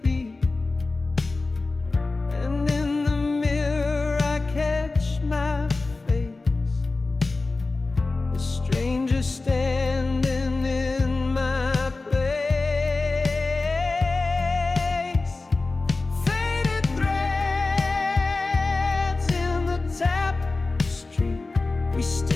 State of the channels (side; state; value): right; quieter; 3.5 dB